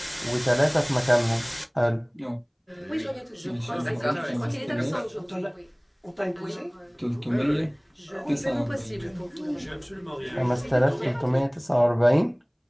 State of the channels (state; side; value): identical; both; correlation 1.00